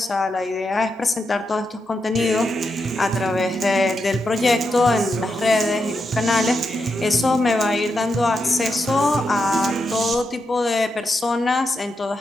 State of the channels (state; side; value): normal; both; correlation 0.85